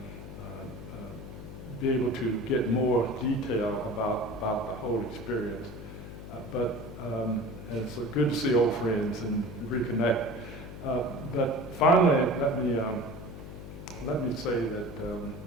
be able to get more detail about the whole experience. But it's good to see old friends and reconnect. But finally, let me say that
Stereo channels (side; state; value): left; noise; hum, 12 dB below the sound